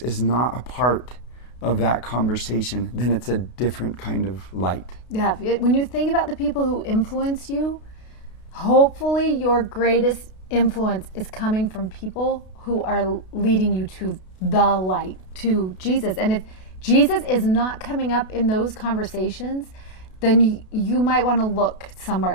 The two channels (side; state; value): right; late; 32 ms